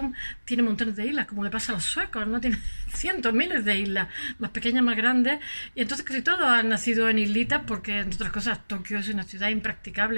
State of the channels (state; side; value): inverted; both; correlation -1.00